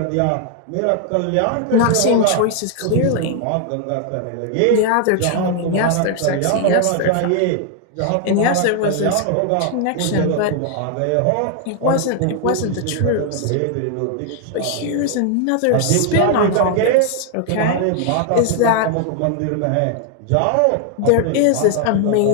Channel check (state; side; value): different; both; correlation 0.00